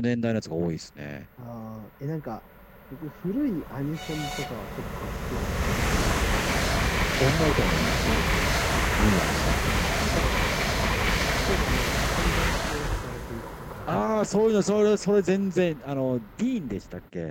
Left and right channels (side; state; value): both; identical; correlation 1.00